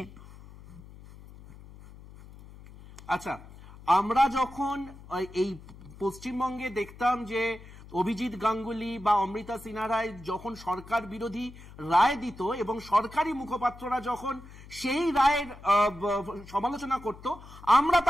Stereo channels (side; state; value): left; noise; hum, 18 dB below the sound